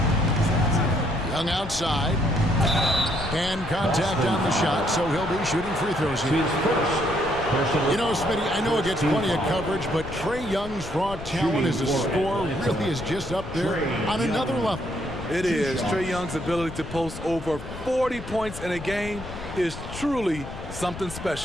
Young outside. And contact on the shot, so he'll be shooting free throws here. You know, Smitty, I know it gets plenty of coverage, but Trae Young's raw talent as a scorer really is just up there on another level. It is. Trae Young's ability to post over 40 points in a game is truly something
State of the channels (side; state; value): left; noise; rumble, 11 dB below the sound